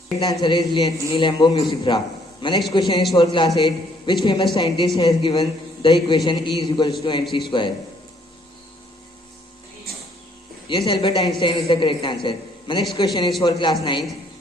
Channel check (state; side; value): normal; both; correlation 0.65